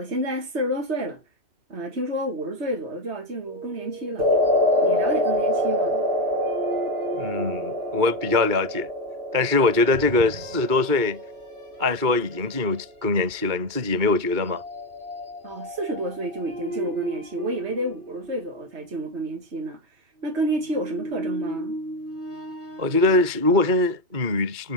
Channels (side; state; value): left; late; 2.3 ms